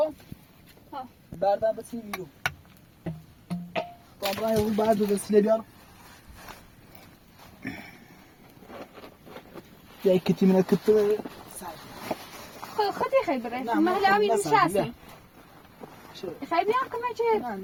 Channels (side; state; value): both; identical; correlation 1.00